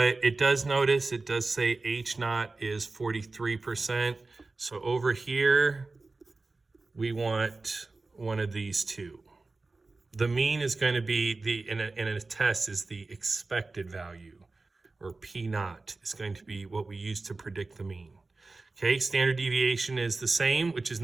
it does say H naught is 43%. So over here, we want one of these two. The mean is going to be, in a test, is the expected value, or P naught is going to be what we use to predict the mean. Okay, standard deviation is the same, which is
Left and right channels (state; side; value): quieter; left; 3.5 dB